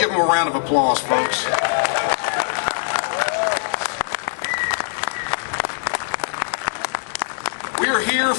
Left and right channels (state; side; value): silent; right; digital silence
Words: them a round of applause, folks. We are here